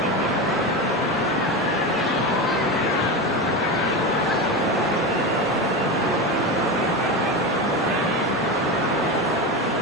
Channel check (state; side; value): normal; both; correlation 0.20